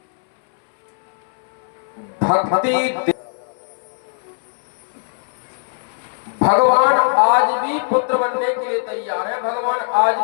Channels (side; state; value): right; silent; 66 dB below the other